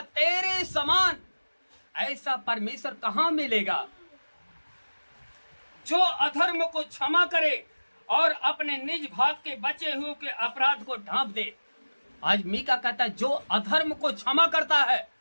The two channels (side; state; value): both; inverted; correlation -1.00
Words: तेरे समान ऐसा परमेश्वर कहाँ मिलेगा जो अधर्म को क्षमा करे और अपने निज भाग के बचे हुए के अपराध को ढांप दे। आज मीका कहता है जो अधर्म को क्षमा करता है